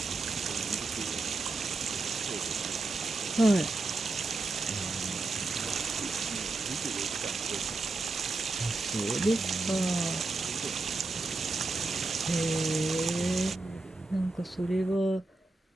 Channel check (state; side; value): quieter; left; 3.3 dB